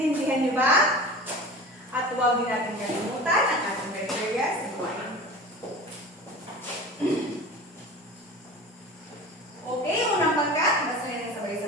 nyo ba? At huwag din natin kalimutan ang ating criteria sa gawain. Okay, unang pangkat, basahin ng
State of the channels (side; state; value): both; normal; correlation 0.36